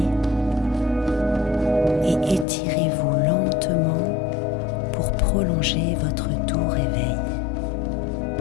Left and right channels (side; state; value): right; drops out; at 2.5 s